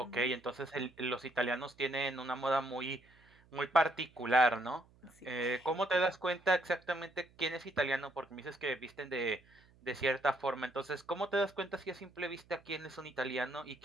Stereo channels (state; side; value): noise; right; hum, 28 dB below the sound